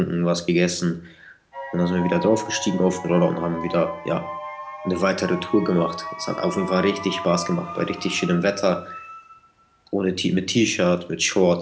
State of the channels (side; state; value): both; identical; correlation 1.00